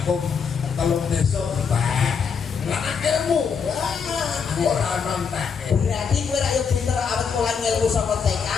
telung desa mbak. Lah ilmu ora ono entake. berarti kowe ra yo pinter awet mulai ngelmu saka TK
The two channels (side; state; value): right; quieter; 6.2 dB